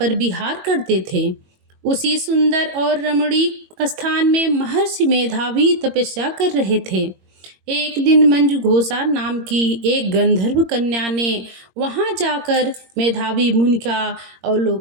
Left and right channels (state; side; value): late; left; 22 ms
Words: विहार करते थे। उसी सुंदर और रमणीक स्थान में महर्षि मेधावी तपस्या कर रहे थे। एक दिन मंजुघोषा नाम की एक गंधर्व कन्या ने वहां जाकर मेधावी मुनि का